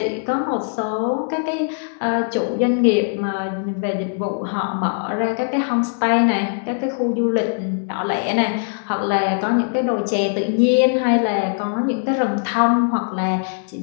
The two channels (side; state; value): right; silent; digital silence